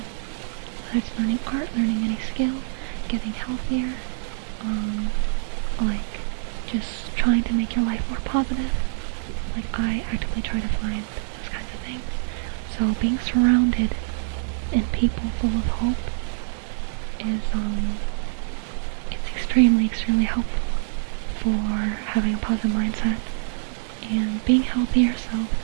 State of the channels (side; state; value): left; silent; digital silence